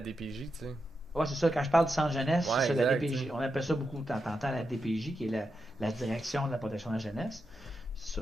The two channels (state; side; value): normal; both; correlation 0.87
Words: tu sais. ouais, c'est ça. Quand je parle du centre jeunesse, c'est Ouais, ça, la exact, tu DPJ. sais. On appelle ça beaucoup, t'entends la DPJ, qui est la direction de la protection de la jeunesse. C'est